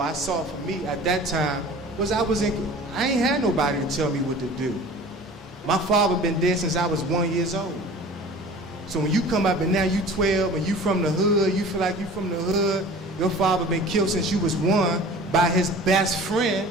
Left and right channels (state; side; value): normal; both; correlation 0.42